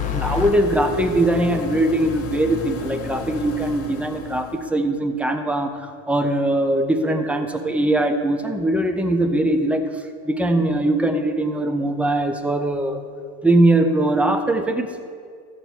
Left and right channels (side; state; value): both; normal; correlation 0.69